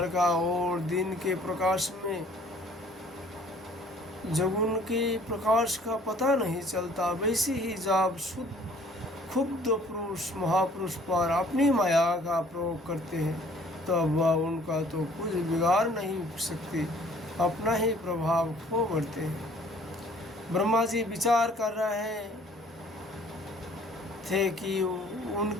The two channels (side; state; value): both; normal; correlation 0.56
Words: का और दिन के प्रकाश में जब उनके प्रकाश का पता नहीं चलता, वैसे ही जब शुद्ध क्षुब्ध पुरुष महापुरुष पर अपनी माया का प्रयोग करते हैं तब वह उनका तो कुछ बिगाड़ नहीं सकती, अपना ही प्रभाव खो बढ़ते हैं। ब्रह्मा जी विचार कर रहे थे कि